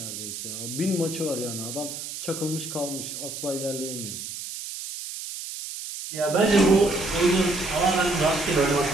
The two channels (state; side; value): noise; right; hiss, 8 dB below the sound